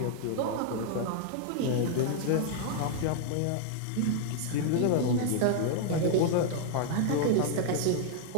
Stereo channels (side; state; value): both; different; correlation 0.00